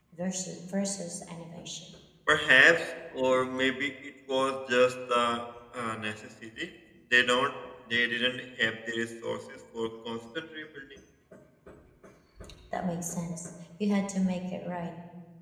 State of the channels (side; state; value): both; identical; correlation 1.00